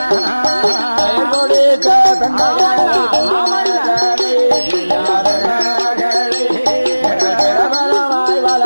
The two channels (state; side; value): inverted; both; correlation -1.00